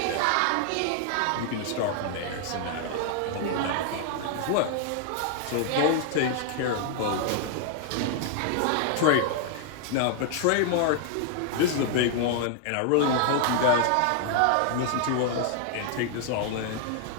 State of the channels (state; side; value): different; both; correlation 0.00